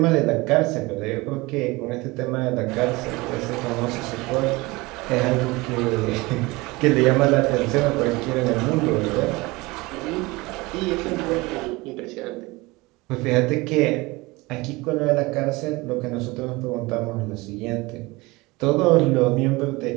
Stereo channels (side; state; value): left; quieter; 22.7 dB